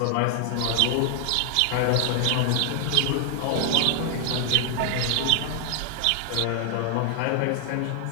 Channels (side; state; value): both; different; correlation 0.00